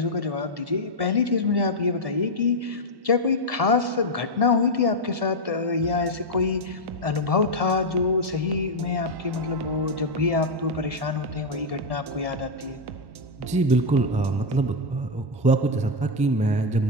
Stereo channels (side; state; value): left; late; 1.1 ms